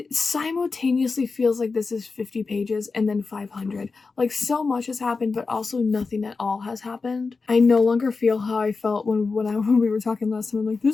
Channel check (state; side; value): quieter; right; 4.3 dB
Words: simultaneously feels like this is 50 pages and then 500. Like, so much has happened, but also nothing at all has happened. I no longer feel how I felt when we were talking last time. I'm like,